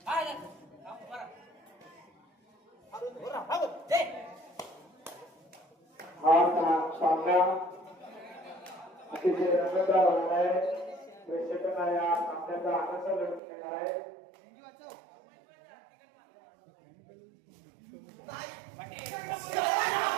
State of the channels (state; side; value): drops out; left; at 13.4 s